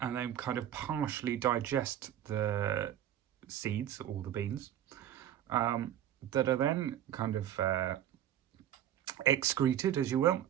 then kind of partially digest the seeds or the beans, that are then kind of excreted, as you will,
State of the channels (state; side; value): quieter; left; 11.1 dB